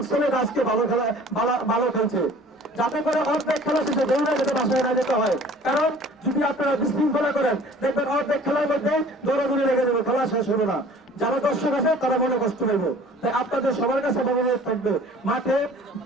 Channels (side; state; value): both; normal; correlation 0.49